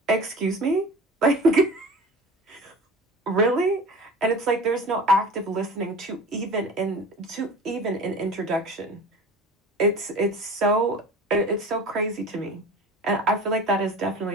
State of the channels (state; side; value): normal; both; correlation 0.38